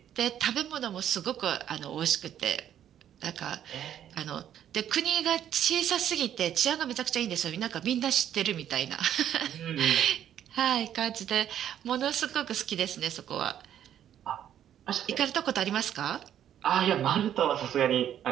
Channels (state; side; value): quieter; left; 10.4 dB